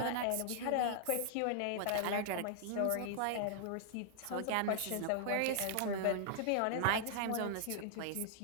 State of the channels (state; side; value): different; both; correlation -0.01